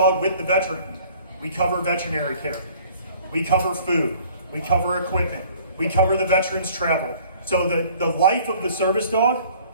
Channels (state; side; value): inverted; both; correlation -0.53